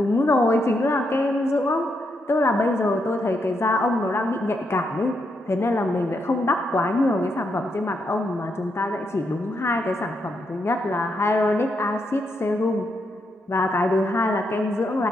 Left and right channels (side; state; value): both; normal; correlation 0.80